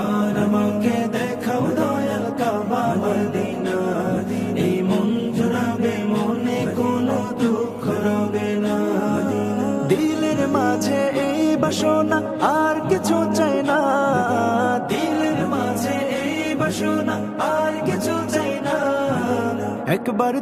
আমাকে দেখাও দয়াল কাবা মদিনা, এই মন জুড়াবে মনে কোনো দুঃখ রবে না। দিলের মাঝে এই বাসনা আর কিছু চাই না, দিলের মাঝে এই বাসনা আর কিছু চাই না। একবার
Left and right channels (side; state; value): both; identical; correlation 1.00